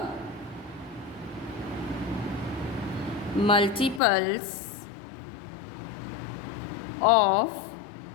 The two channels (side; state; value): right; drops out; at 4.0 s